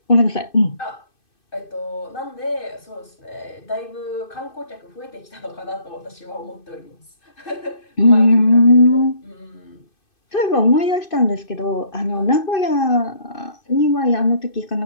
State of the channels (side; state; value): right; late; 2.6 ms